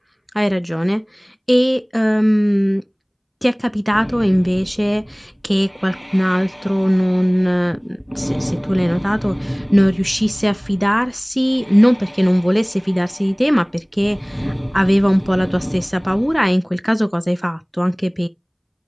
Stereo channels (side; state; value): both; identical; correlation 1.00